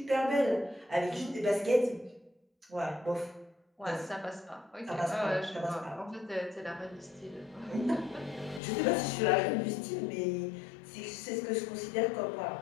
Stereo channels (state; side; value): drops out; right; at 8.6 s